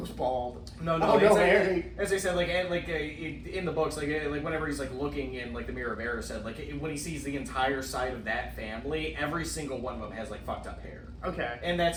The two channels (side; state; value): both; identical; correlation 1.00